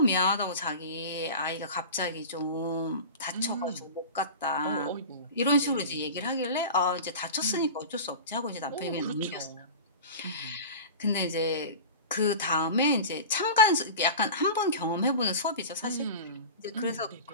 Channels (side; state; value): both; inverted; correlation -0.32